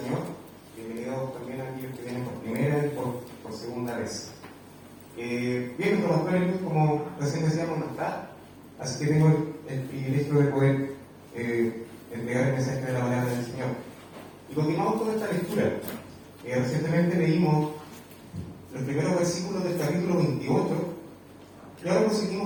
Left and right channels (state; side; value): identical; both; correlation 1.00